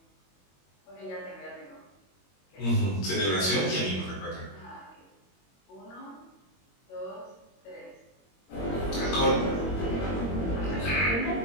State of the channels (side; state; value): right; late; 21 ms